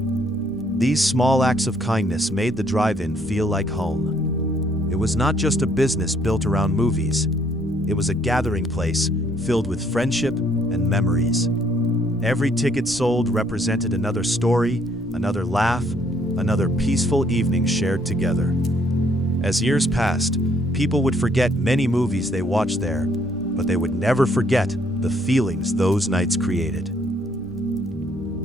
These small acts of kindness made the drive-in feel like home. It was not just a business built around movies. It was a gathering place filled with friendship and memories. Every ticket sold represented another story, another laugh, another peaceful evening shared together. As years passed, people would forget many movies they watched there, but they would never forget the feelings those nights created.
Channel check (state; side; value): normal; both; correlation 0.66